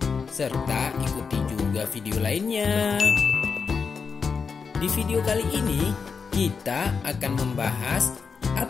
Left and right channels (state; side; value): quieter; right; 5.5 dB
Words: Serta ikuti juga video lainnya. Di video kali ini, kita akan membahas